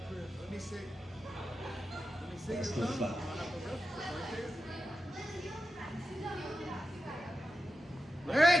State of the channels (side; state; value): both; normal; correlation 0.90